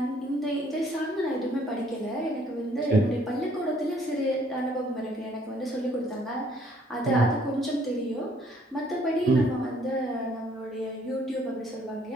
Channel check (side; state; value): both; normal; correlation 0.63